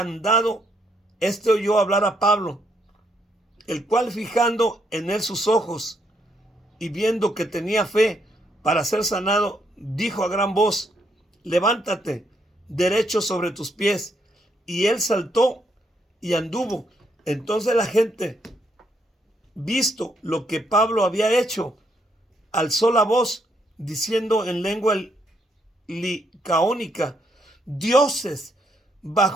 Este oyó hablar a Pablo, el cual, fijando en él sus ojos y viendo que tenía fe para ser sanado, dijo a gran voz, levántate derecho sobre tus pies. Y él saltó y anduvo. Entonces la gente, visto lo que Pablo había hecho, alzó la voz diciendo en lengua licaónica, dioses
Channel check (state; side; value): normal; both; correlation 0.74